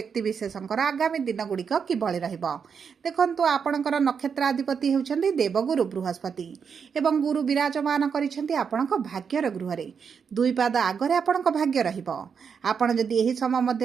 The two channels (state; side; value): quieter; left; 6.5 dB